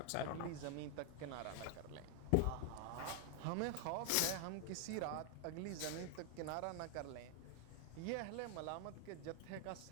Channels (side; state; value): both; different; correlation 0.00